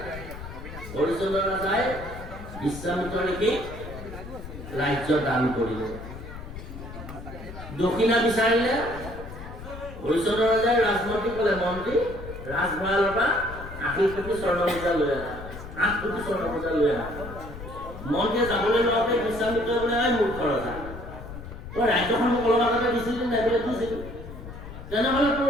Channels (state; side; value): noise; left; rumble, 12 dB below the sound